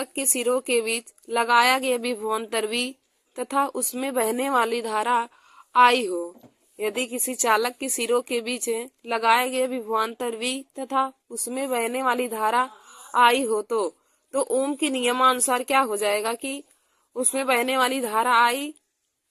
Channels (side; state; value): both; identical; correlation 1.00